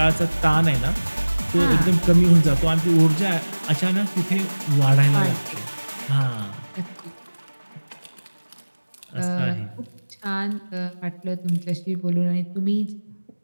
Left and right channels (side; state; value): both; inverted; correlation -1.00